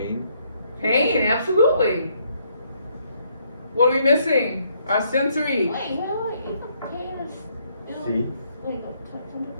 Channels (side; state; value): both; inverted; correlation -0.71